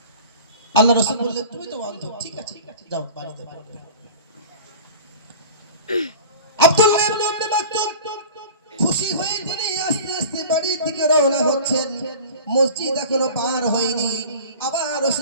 আল্লাহ রাসূল বললেন তুমি তো অন্ধ, ঠিক আছে যাও বাড়িতে পড়বে। আব্দুল্লাহ ইবনে মাকতুম খুশি হয়ে তিনি আস্তে আস্তে বাড়ির দিকে রওনা হচ্ছেন। মসজিদ এখনো পার হয়নি, আবার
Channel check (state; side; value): inverted; both; correlation -0.40